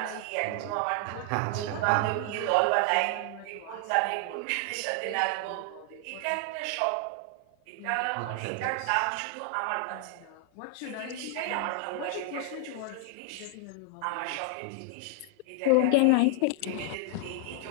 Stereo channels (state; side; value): different; both; correlation 0.00